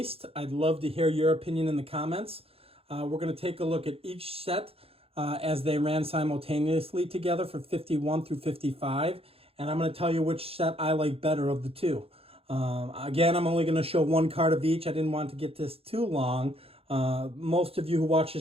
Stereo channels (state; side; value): late; left; 0.28 ms